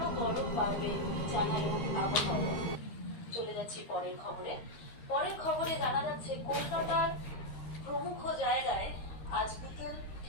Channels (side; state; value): right; late; 13 ms